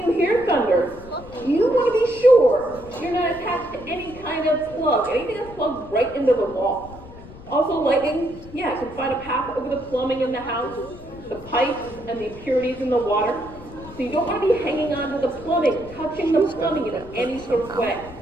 hear thunder, you want to be sure you're not attached to any kind of plug, anything that's plugged right into the wall. Also, lightning, can find a path over the plumbing in the house, the pipes and the impurities in the water. So you don't want to be hanging onto the plumbing, touching the plumbing in any sort of way.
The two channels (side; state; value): left; noise; rumble, 17 dB below the sound